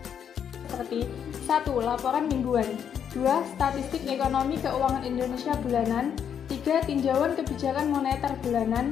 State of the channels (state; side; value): quieter; right; 8.3 dB